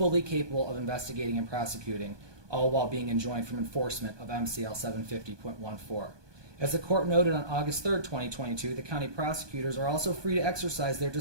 capable of investigating and prosecuting, all while being enjoined from enforcement of MCL 750.14. As the court noted on August 3, 2022, the county prosecutors are also free to exercise their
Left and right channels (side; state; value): left; late; 1.2 ms